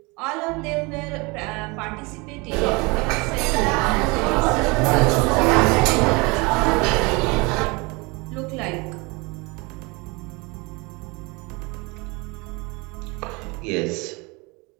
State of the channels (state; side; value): quieter; left; 26.9 dB